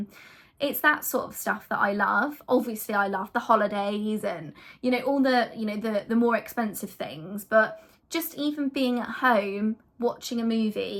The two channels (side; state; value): both; identical; correlation 1.00